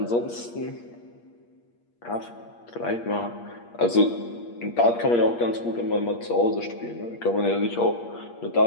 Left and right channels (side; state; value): right; late; 8.5 ms